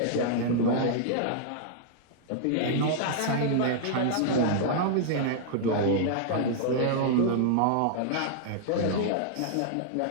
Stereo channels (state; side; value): different; both; correlation -0.01